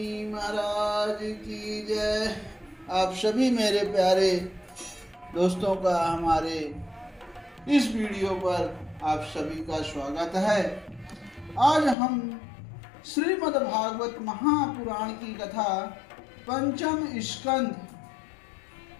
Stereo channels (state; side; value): drops out; right; at 12.0 s